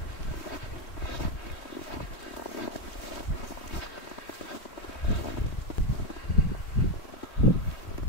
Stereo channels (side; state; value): right; late; 3.2 ms